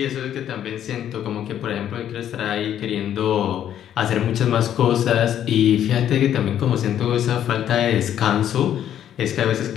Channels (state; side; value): quieter; right; 10.5 dB